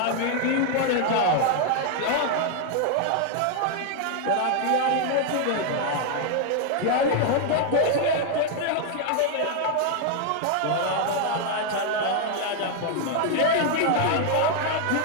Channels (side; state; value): both; different; correlation 0.00